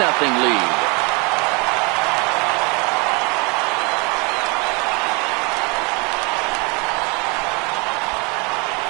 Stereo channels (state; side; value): quieter; left; 29.8 dB